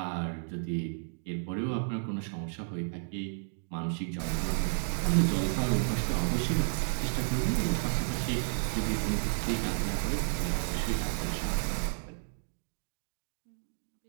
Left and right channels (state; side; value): silent; left; digital silence